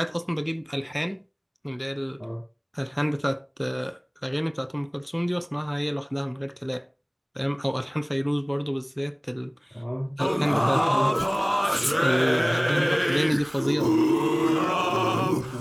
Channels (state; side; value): identical; both; correlation 1.00